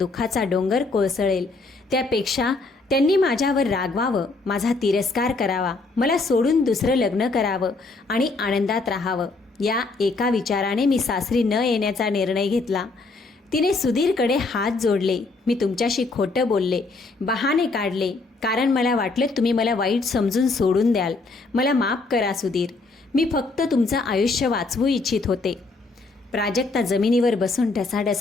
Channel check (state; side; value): quieter; right; 3.6 dB